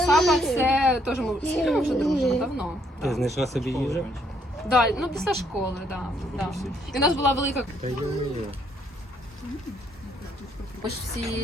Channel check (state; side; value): normal; both; correlation 0.70